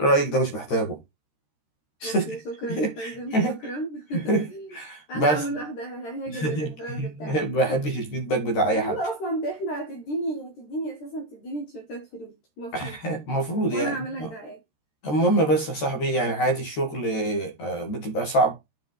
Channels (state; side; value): late; right; 13 ms